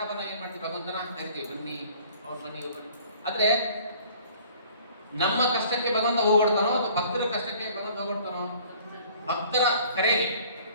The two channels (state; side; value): inverted; both; correlation -0.53